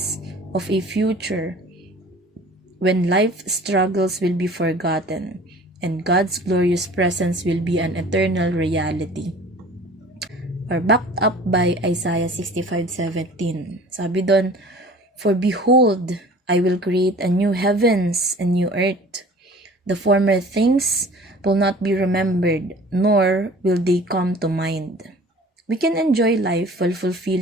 of a future when life struggles will be forgotten and God's glorious presence will be an eternal reality. Or backed up by Isaiah 65:17. Sabi doon, for behold, I will create a new heavens and new earth. The former things will not be remembered, nor will they come to mind. We can enjoy life while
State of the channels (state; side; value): normal; both; correlation 0.46